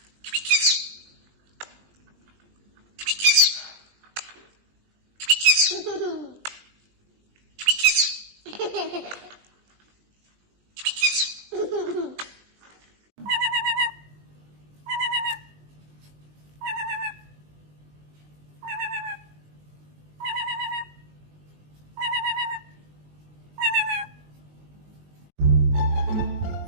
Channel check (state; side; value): late; left; 20 ms